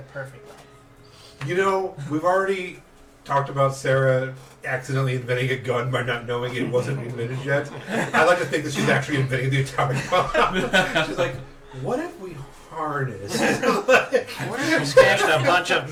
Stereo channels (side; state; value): both; identical; correlation 1.00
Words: perfect length. We've already talked about Sarah accidentally inventing a gun by not knowing it wasn't invented yet. I like to think that she's actually inventing the atomic bomb. She's like, what if we harness? What if we smashed a bunch of